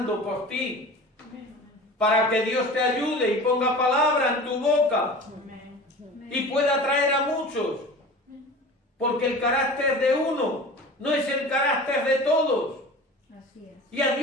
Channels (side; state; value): both; normal; correlation 0.37